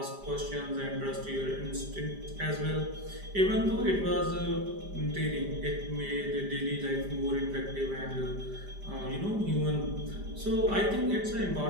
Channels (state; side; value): late; left; 5.0 ms